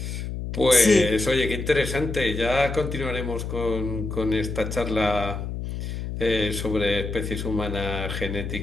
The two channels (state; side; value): noise; left; hum, 5 dB below the sound